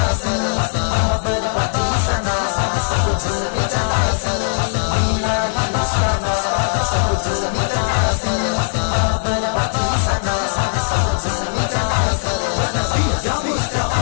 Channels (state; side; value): silent; right; 67 dB below the other